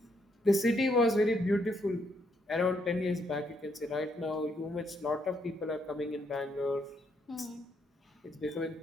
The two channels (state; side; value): normal; both; correlation 0.74